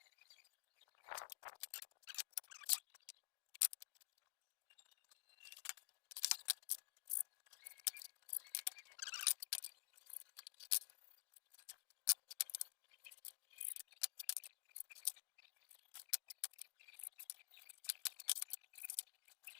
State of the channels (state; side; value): silent; right; digital silence